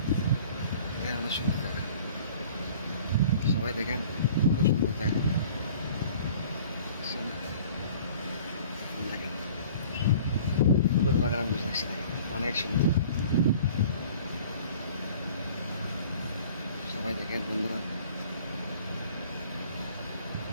অনেক সুন্দর জায়গা, সবাই দেখেন খুব সুন্দর জায়গা। দেখেন ফুলের বাগান আমি দেখছি, দেখেন অনেক সুন্দর। সবাই দেখেন বন্ধুরা,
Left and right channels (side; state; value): both; inverted; correlation -0.49